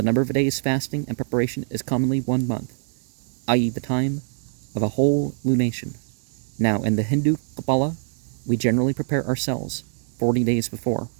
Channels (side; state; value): left; silent; digital silence